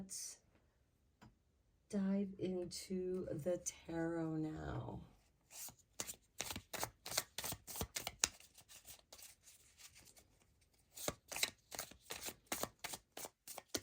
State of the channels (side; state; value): both; identical; correlation 1.00